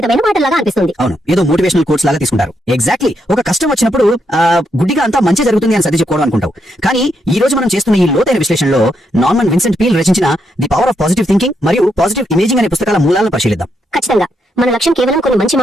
మాటలాగా అనిపిస్తుంది. అవును, ఏదో మోటివేషనల్ కోట్స్ లాగా తీసుకుంటారు. ఎగ్జాక్ట్లీ, ఒక కష్టం వచ్చినప్పుడు గుడ్డిగా అంతా మంచి జరుగుతుంది అని సర్ది చెప్పుకోవడం అనుకుంటావు. కానీ ఈ రోజు మనం చేస్తున్న ఈ లోతైన విశ్లేషణలో నార్మన్ విన్సెంట్ పీల్ రచించిన the power of positive thinking మరియు పాజిటివ్ ఇమేజింగ్ అనే పుస్తకాల మూలాలను పరిశీలిద్దాం. ఖచ్చితంగా మన లక్ష్యం కేవలం కొన్ని మంచి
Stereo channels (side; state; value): both; normal; correlation 0.79